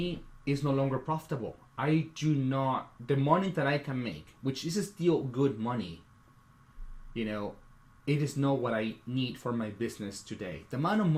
it's no longer profitable. The money that I can make, which is still good money, it is not what I need for my business today. The amount of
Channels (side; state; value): both; identical; correlation 1.00